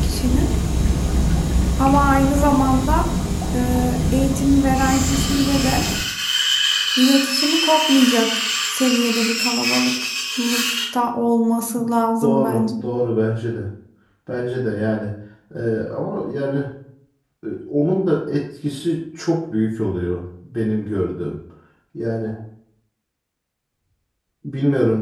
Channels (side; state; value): both; identical; correlation 1.00